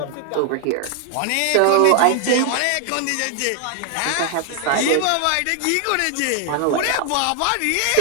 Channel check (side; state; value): both; different; correlation 0.00